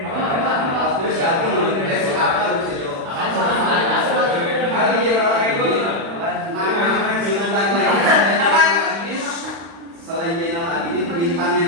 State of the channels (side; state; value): left; late; 35 ms